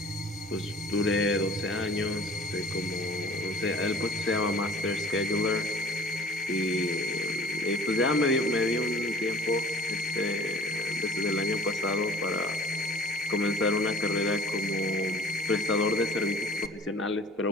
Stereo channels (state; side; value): normal; both; correlation 0.48